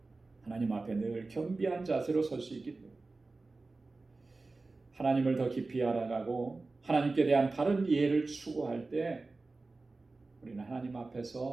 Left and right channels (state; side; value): quieter; left; 3.5 dB